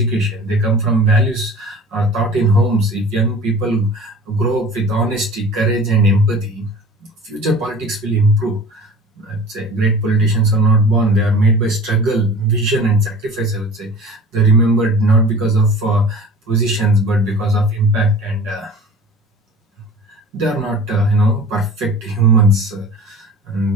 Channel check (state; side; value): normal; both; correlation 0.41